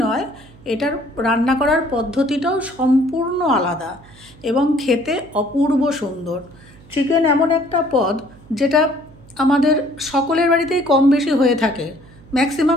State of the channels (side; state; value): right; noise; hum, 24 dB below the sound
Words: নয়, এটার রান্না করার পদ্ধতিটাও সম্পূর্ণ আলাদা এবং খেতে অপূর্ব সুন্দর। চিকেন এমন একটা পদ যেটা আমাদের সকলের বাড়িতেই কম বেশি হয়ে থাকে।